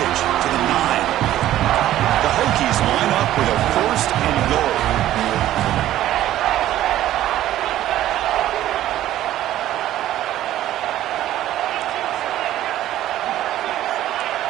to the 9. The Hokies line up with a first and goal.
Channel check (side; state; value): left; quieter; 13.4 dB